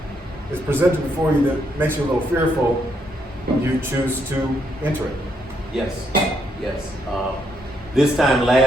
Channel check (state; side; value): normal; both; correlation 0.75